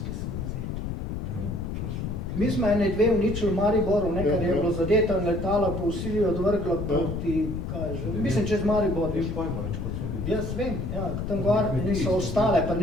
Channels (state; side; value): noise; left; rumble, 4 dB below the sound